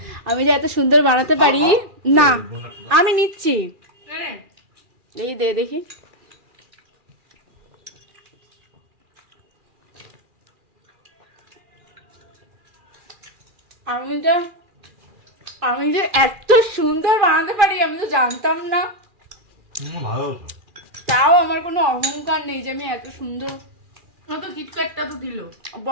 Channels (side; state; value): left; late; 2.4 ms